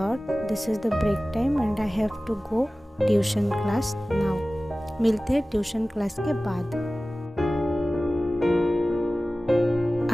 this is the break time and I have to go tuition class now. मिलते हैं ट्यूशन क्लास के बाद।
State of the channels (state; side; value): normal; both; correlation 0.97